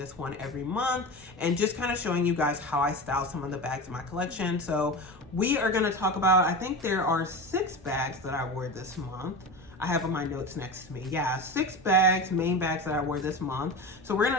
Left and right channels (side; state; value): both; normal; correlation 0.27